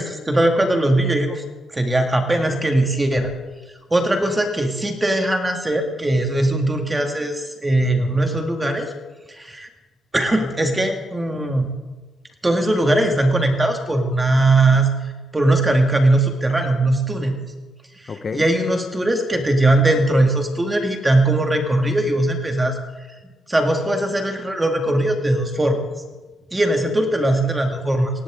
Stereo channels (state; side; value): normal; both; correlation 0.83